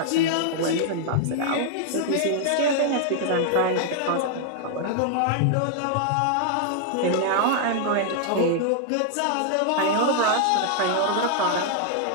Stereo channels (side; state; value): both; different; correlation 0.00